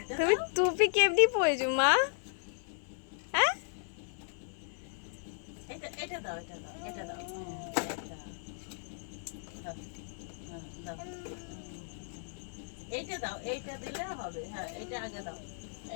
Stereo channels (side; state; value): right; silent; 54 dB below the other